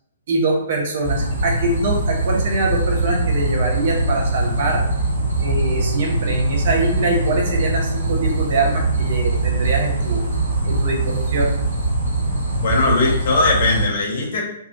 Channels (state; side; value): inverted; both; correlation -0.59